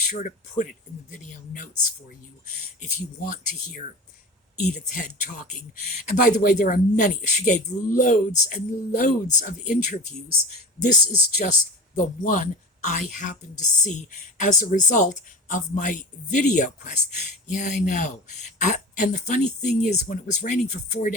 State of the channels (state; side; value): normal; both; correlation 0.32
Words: to put it in the video notes for you if you want to hear Edith Head talking. And by the way, there are many. She gave loads and loads of interviews. This is just the one I happened to see as a result of my video quest. Yeah, I know. And the funny thing is, when it was raining for 4